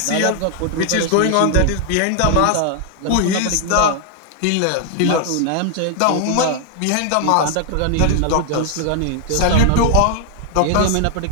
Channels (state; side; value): different; both; correlation 0.00